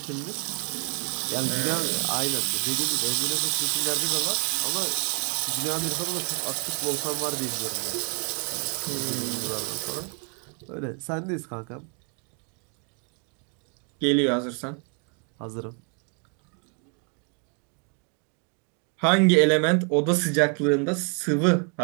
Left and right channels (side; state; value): left; quieter; 37.9 dB